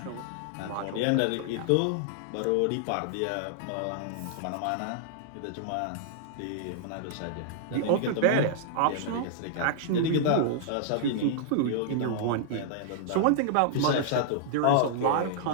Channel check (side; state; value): both; different; correlation -0.01